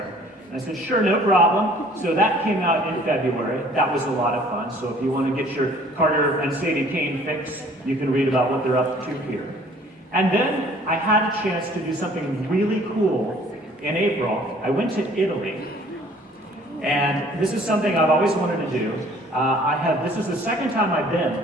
And I said, sure, no problem. So that came out in February. That was a lot of fun. So if you want to get your Carter and Sadie Kane fix, you can read about what they're up to here. And then I had a chance to do something really cool in April. I went to Italy. And this is something I've always wanted to do. This is the second time I've been,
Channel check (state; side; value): normal; both; correlation 0.54